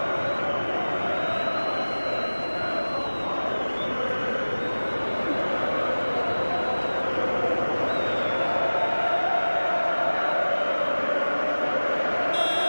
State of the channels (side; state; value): both; inverted; correlation -1.00